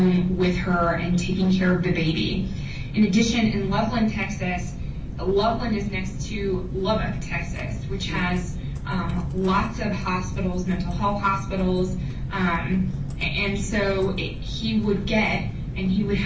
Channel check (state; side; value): identical; both; correlation 1.00